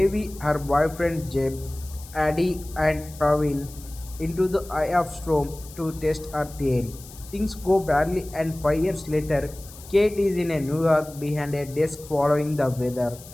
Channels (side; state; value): left; noise; hiss, 18 dB below the sound